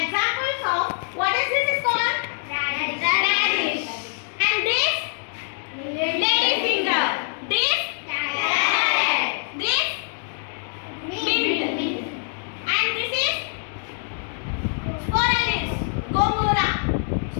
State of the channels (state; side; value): silent; right; 59 dB below the other